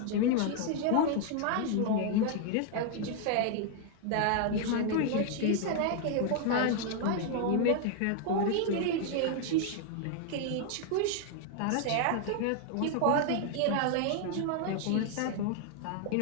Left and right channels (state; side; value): different; both; correlation 0.00